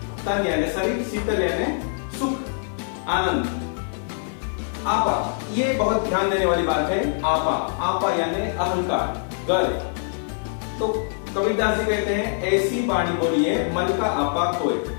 तन यानी शरीर, शीतल यानी सुख, आनंद। आपा, ये बहुत ध्यान देने वाली बात है। आपा, आपा यानी अहंकार, गर्व। तो कबीरदास जी कहते हैं ऐसी वाणी बोलिए मन का आपा खोए।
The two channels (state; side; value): silent; right; digital silence